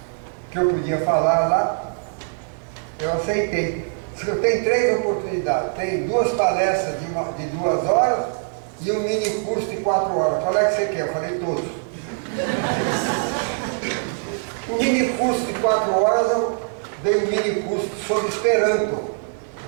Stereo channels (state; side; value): silent; left; digital silence